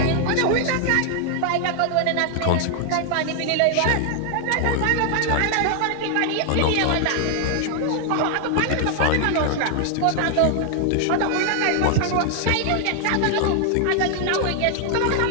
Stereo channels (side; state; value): both; different; correlation 0.00